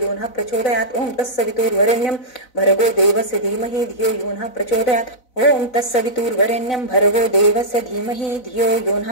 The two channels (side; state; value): right; late; 4.0 ms